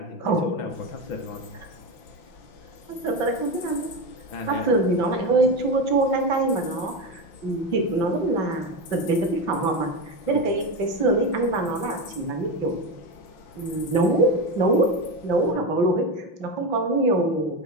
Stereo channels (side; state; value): right; late; 5.9 ms